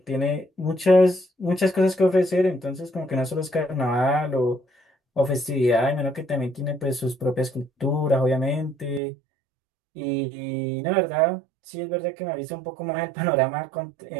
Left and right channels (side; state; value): left; drops out; at 9.0 s